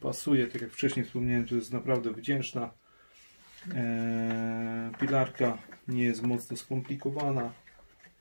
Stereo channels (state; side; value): inverted; both; correlation -1.00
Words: Tak jak wcześniej wspomniałem, to jest naprawdę wdzięczna pilarka. Nie jest mocno skomplikowana.